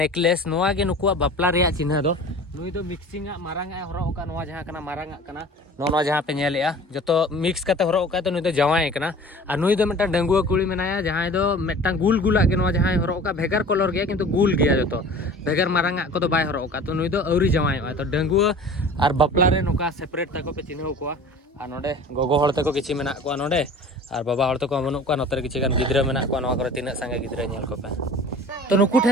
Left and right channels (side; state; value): both; normal; correlation 0.42